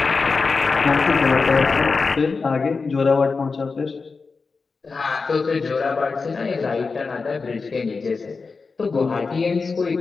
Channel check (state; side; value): quieter; right; 4.5 dB